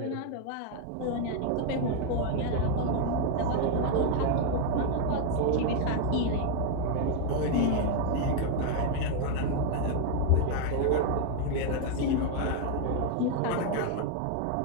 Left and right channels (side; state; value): both; different; correlation 0.00